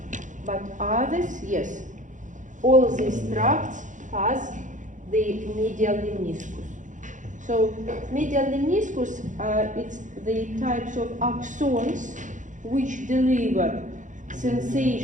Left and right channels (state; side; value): late; left; 0.36 ms